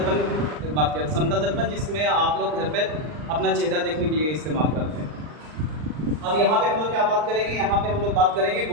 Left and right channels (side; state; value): left; late; 39 ms